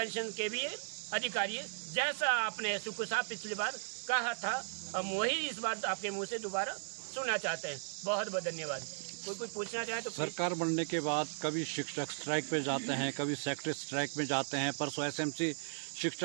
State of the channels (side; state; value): left; silent; 53 dB below the other